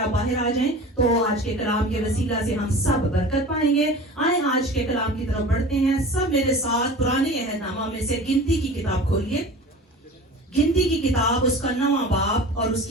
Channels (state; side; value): normal; both; correlation 0.38